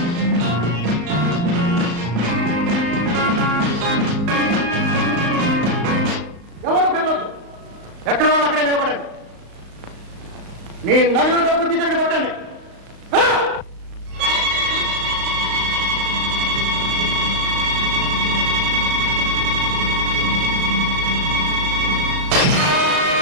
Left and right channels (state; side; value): late; left; 35 ms